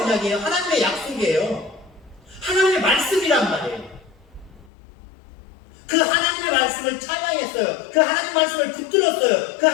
하나님의 약속이에요. 하나님의 말씀이란 말이에요. 그 하나님의 말씀을 찬양했어요. 그 하나님의 말씀을 붙들었어요. 그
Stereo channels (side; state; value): right; drops out; at 4.7 s